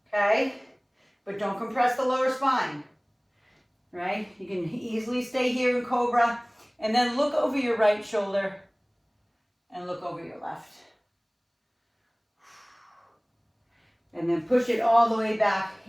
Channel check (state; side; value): identical; both; correlation 1.00